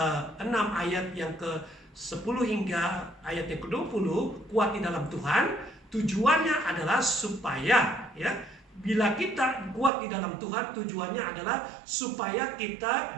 ayat yang ke-10 hingga ayat yang ke-20, kuat di dalam Tuhan. Tujuannya adalah supaya bila kita kuat di dalam Tuhan, tujuannya adalah supaya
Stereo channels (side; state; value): left; drops out; at 9.9 s